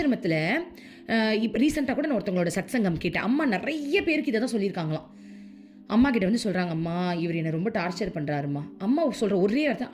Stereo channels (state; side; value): identical; both; correlation 1.00